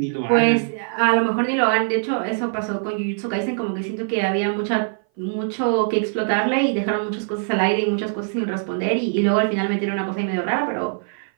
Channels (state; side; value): silent; left; 59 dB below the other